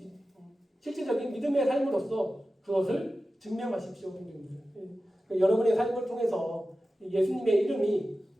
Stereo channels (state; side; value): normal; both; correlation 0.94